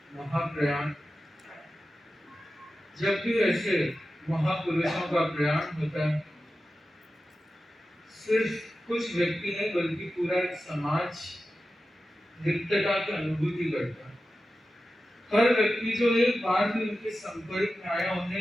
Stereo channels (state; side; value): normal; both; correlation 0.93